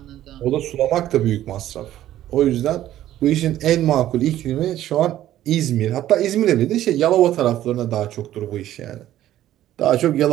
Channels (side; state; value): left; quieter; 13.0 dB